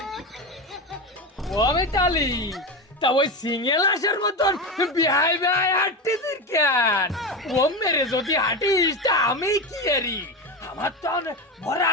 ও আমি চালি তা ওই সিঙ্গেল আসার মতন বিহাই বিহাই হাঁটতেছিস কেন? ও মেরে যদি হাঁটিস তা আমি কি এরি? আমার তো ভরা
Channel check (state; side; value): normal; both; correlation 0.19